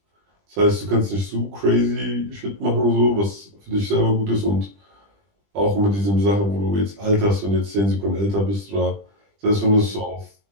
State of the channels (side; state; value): left; late; 20 ms